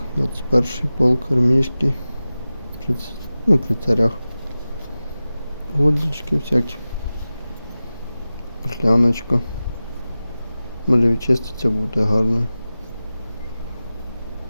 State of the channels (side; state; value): both; inverted; correlation -0.96